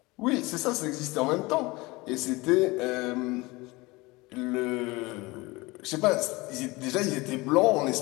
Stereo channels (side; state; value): right; quieter; 23.0 dB